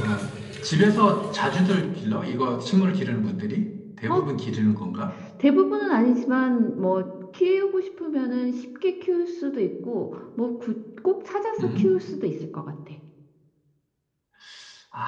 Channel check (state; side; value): identical; both; correlation 1.00